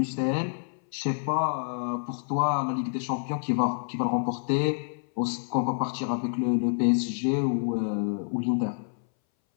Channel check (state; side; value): silent; right; 60 dB below the other